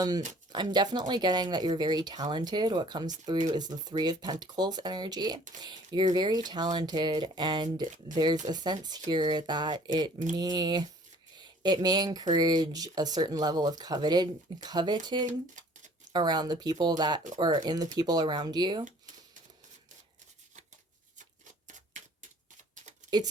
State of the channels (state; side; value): normal; both; correlation 0.53